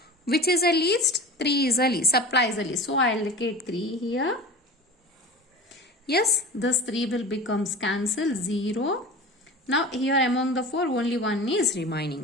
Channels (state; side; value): normal; both; correlation 0.35